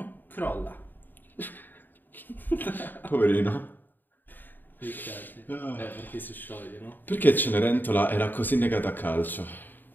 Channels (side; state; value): right; late; 0.090 ms